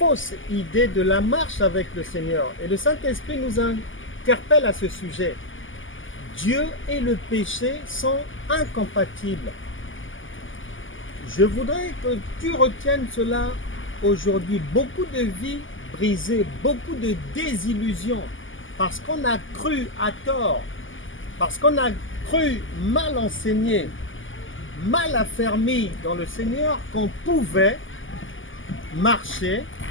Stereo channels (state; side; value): late; right; 0.57 ms